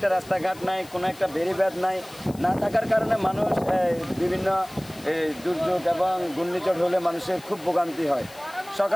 রাস্তাঘাট নাই, কোনো একটা বেড়িবাঁধ নাই, না থাকার কারণে মানুষ বিভিন্ন দুর্যোগ এবং ঘূর্ণিঝড় হলে মানুষের খুব ভোগান্তি হয়।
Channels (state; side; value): noise; left; hiss, 21 dB below the sound